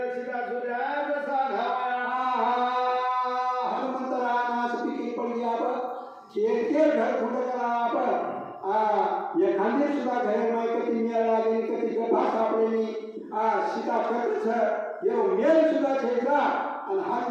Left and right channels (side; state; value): both; identical; correlation 1.00